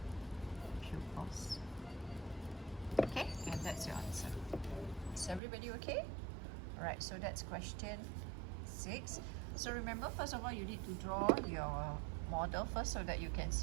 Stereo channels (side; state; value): left; drops out; at 5.4 s